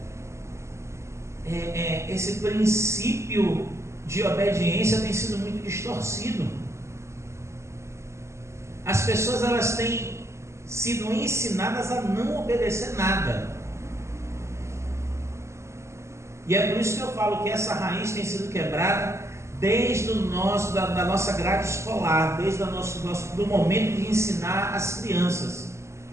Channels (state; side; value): late; left; 0.13 ms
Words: esse princípio de obediência tem sido muito distorcido. As pessoas, elas têm sido ensinadas a não obedecer nada. E é por isso que eu falo que essa raiz tem sido quebrada desde da nossa grade escolar, desde do momento de ensinar as crianças,